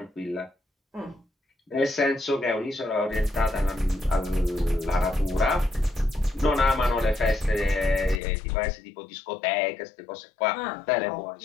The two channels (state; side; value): drops out; right; at 8.2 s